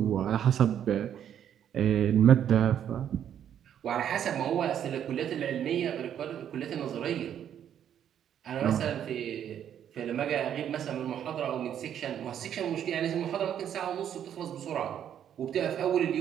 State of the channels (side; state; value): left; quieter; 9.6 dB